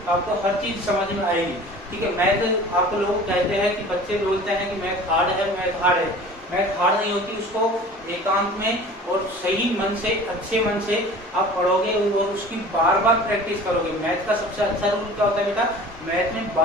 आपको हर चीज समझ में आएगी। ठीक है, मैथ आप लोग कहते हैं कि बच्चे बोलते हैं कि मैथ हार्ड है, मैथ हार्ड है। मैथ हार्ड नहीं होती, उसको एकांत में और सही मन से, अच्छे मन से आप पढ़ोगे और उसकी बार बार प्रैक्टिस करोगे। मैथ का सबसे अच्छा रूल क्या होता है बेटा, मैथ में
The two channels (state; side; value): normal; both; correlation 0.42